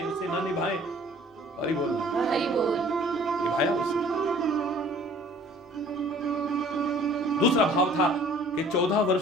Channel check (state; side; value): normal; both; correlation 0.53